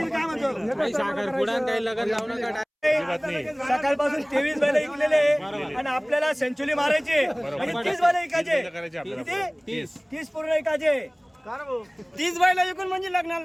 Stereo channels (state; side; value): identical; both; correlation 1.00